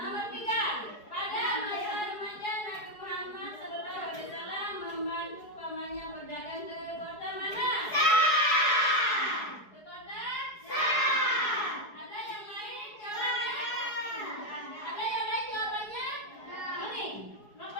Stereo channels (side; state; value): right; late; 4.8 ms